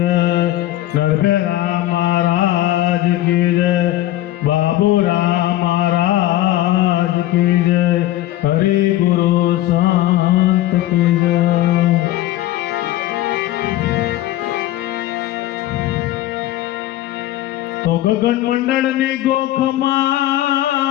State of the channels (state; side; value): quieter; right; 14.9 dB